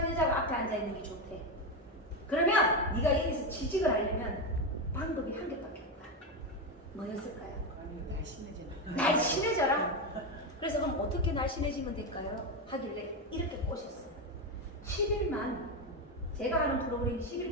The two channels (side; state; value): both; normal; correlation 0.12